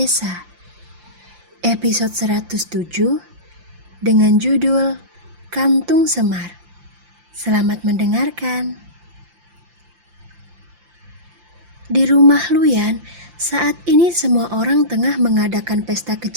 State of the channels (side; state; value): left; late; 5.8 ms